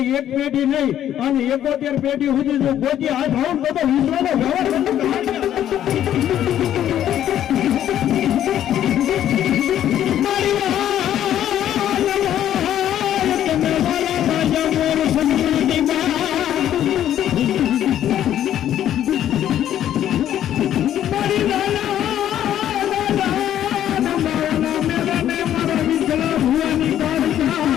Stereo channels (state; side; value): quieter; right; 11.2 dB